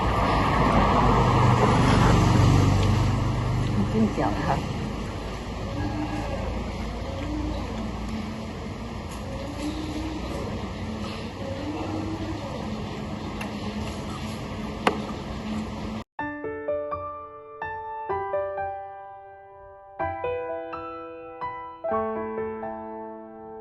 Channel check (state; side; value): identical; both; correlation 1.00